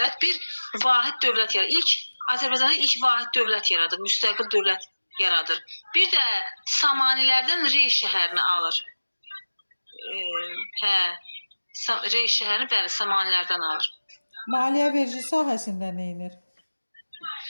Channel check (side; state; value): both; inverted; correlation -1.00